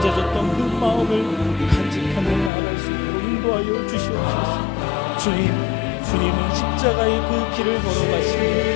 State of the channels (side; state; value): right; drops out; at 2.5 s